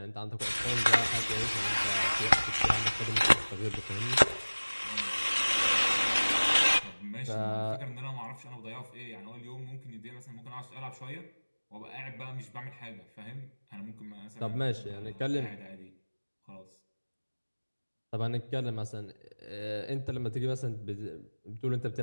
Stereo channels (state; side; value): inverted; both; correlation -1.00